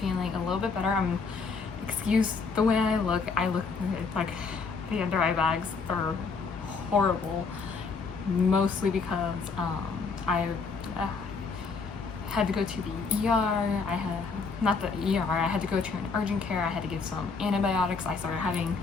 a little bit better. Excuse the way I look like the under eye bags are horrible, mostly because I had to go to the ER. I had to go to an urgent care. I had to get some antibiotics. I started having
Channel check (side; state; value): right; quieter; 4.7 dB